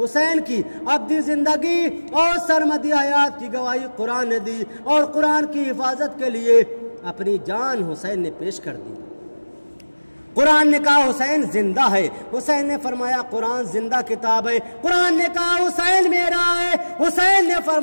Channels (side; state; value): both; inverted; correlation -1.00